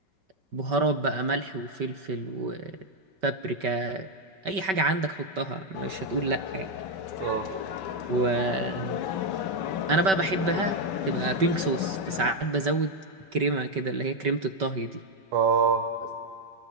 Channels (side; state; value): left; late; 5.2 ms